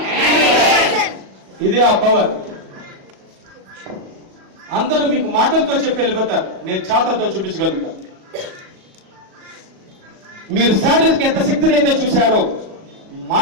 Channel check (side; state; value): left; late; 37 ms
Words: ఇది ఆ పవర్. అందరూ మీకు మాటలతో చెప్పి వెళ్ళిపోతారు, నేను చేతలతో చూపించగలుగుతాను. మీరు శారీరక ఎంత శక్తిని అయితే చూశారో